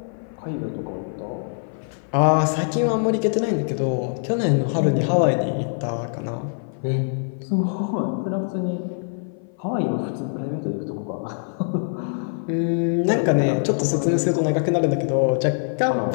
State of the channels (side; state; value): right; silent; 56 dB below the other